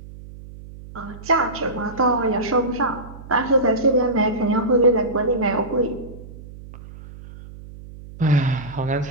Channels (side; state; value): right; noise; hum, 16 dB below the sound